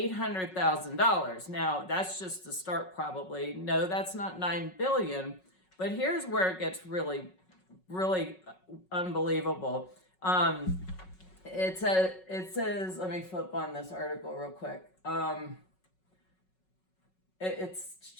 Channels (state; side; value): late; right; 5.4 ms